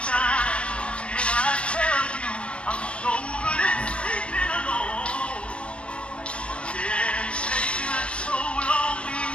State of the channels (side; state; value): right; late; 0.059 ms